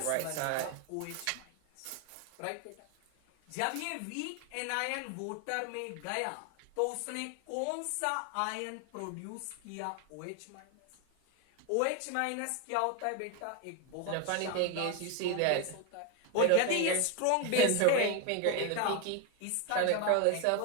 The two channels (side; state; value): both; different; correlation 0.01